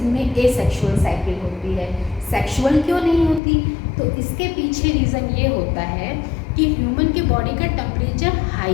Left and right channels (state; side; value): drops out; right; at 3.4 s